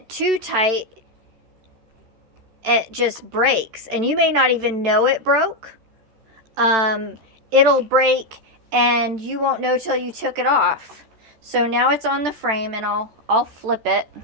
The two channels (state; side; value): late; left; 13 ms